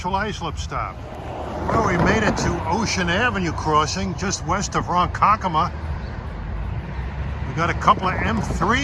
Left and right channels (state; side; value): identical; both; correlation 1.00